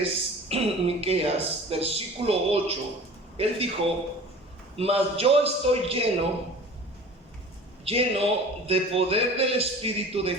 Miqueas, versículo 8, él dijo: mas yo estoy lleno de poder del Espíritu de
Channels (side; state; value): both; normal; correlation 0.42